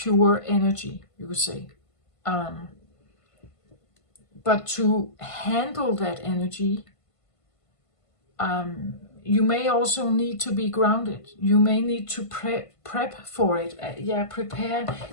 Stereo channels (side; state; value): right; late; 1.5 ms